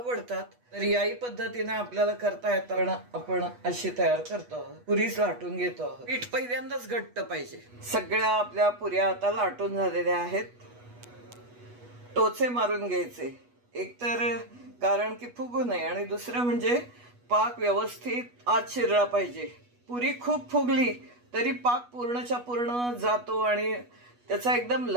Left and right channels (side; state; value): left; late; 8.2 ms